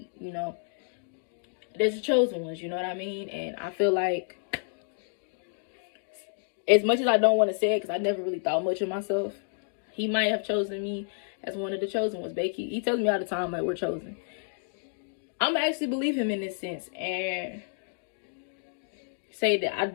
you know, there's the chosen ones. You know what I mean? And I feel like, as much as I don't want to say it, because I never really thought much of myself, he might have chosen me as one of the chosen ones. Becky, he tells me all the time, like, we're chosen. I'm actually believe him in this sense and say that I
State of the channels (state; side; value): silent; right; digital silence